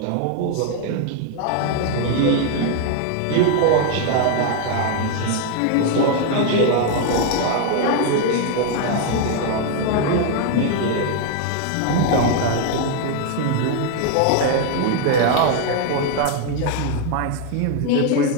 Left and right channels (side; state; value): both; different; correlation 0.00